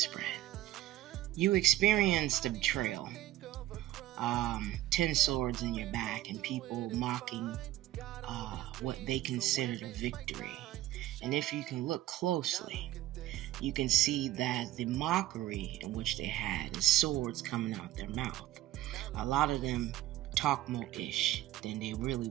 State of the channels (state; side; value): quieter; left; 15.0 dB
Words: You experienced a betrayal. 10 swords in your back and people mocking what they considered a victory. And if you can look closely, you can see that the mockery in which they had is swords coming out their mouth. A lot of them talk more ish than they really